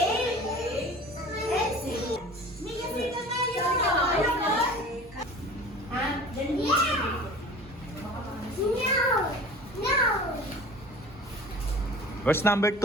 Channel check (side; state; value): both; normal; correlation 0.41